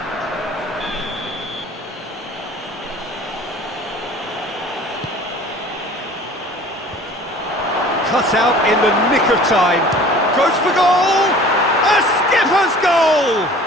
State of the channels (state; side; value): normal; both; correlation 0.46